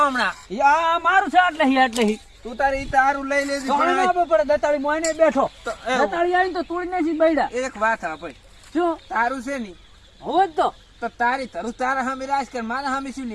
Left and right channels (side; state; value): both; identical; correlation 1.00